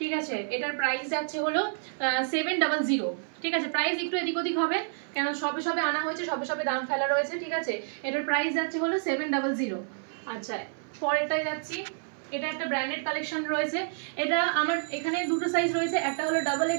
আছে। এটার প্রাইস যাচ্ছে হলো 700, ঠিক আছে। প্রাইস একটু এদিক ওদিক হবে, কেন সবে আনা হয়েছে, সবে দাম ফেলা রয়েছে, ঠিক আছে। এটার প্রাইস যাচ্ছে হলো 700। আচ্ছা, পরেরটায় যাচ্ছি। এটা একটা ব্র্যান্ডেড কালেকশন রয়েছে। এটা আমার এখানে দুটো সাইজ রয়েছে, একটা হলো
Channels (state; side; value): silent; left; 59 dB below the other